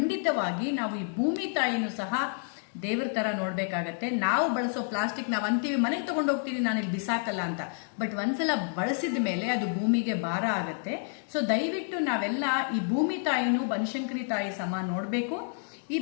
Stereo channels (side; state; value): right; silent; 58 dB below the other